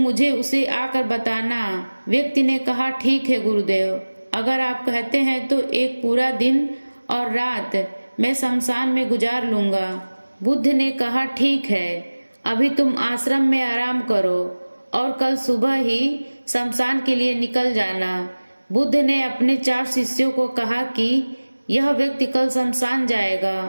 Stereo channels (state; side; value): inverted; both; correlation -1.00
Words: उसे आकर बताना। व्यक्ति ने कहा, ठीक है गुरुदेव, अगर आप कहते हैं तो एक पूरा दिन और रात मैं शमशान में गुजार लूंगा। बुद्ध ने कहा, ठीक है, अभी तुम आश्रम में आराम करो और कल सुबह ही शमशान के लिए निकल जाना। बुद्ध ने अपने 4 शिष्यों को कहा कि यह व्यक्ति कल शमशान जाएगा,